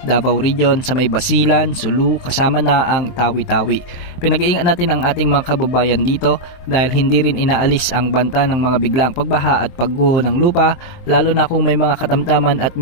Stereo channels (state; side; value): late; right; 23 ms